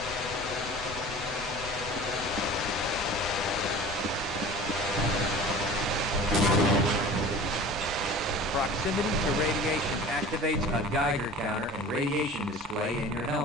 Proximity to radiation activates a Geiger counter and radiation display in your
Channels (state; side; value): normal; both; correlation 0.40